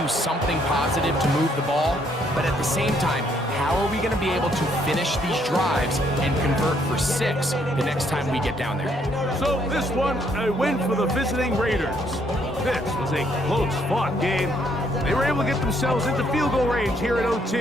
do something positive to move the ball. But at the same time, how are we going to be able to finish these drives and convert for 6 the next time we get down there? So this one, a win for the visiting Raiders. This was a close-fought game. They were able to get themselves into field goal range here at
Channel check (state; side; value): normal; both; correlation 0.69